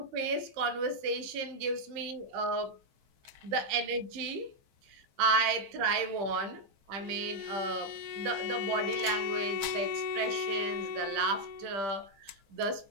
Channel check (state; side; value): late; left; 15 ms